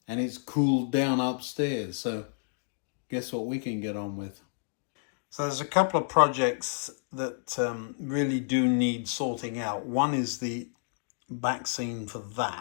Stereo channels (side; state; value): right; silent; digital silence